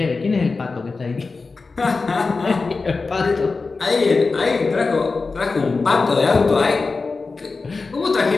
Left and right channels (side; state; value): right; quieter; 4.1 dB